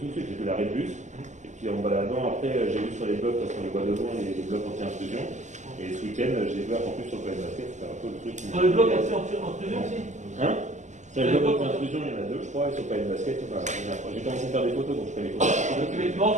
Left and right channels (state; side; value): late; left; 0.34 ms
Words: tout de suite, j'ai vu l'arrêt de bus. Et puis en baladant, après, j'ai vu sur les blocs, parce qu'on les voit devant, les blocs anti-intrusion. Et ce week-end, j'ai vu qu'en plus sur le plan de basket, c'était un peu le truc. Sur les blocs anti-intrusion aussi? Hein? Sur les blocs anti-intrusion, il y en a 2, je crois, et sur le plan de basket, j'ai commencé à faire des photos, donc je fais les photos. Donc effectivement,